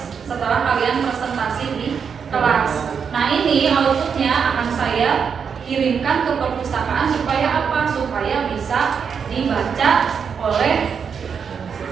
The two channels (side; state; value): left; quieter; 6.6 dB